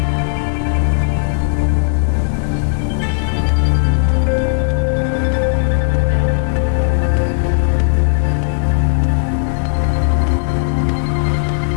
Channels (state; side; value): silent; right; digital silence